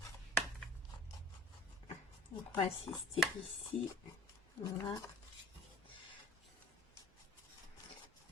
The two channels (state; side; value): normal; both; correlation 0.48